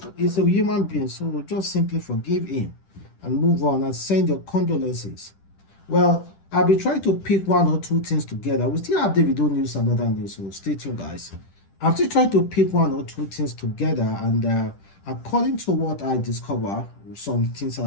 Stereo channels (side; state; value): right; late; 10 ms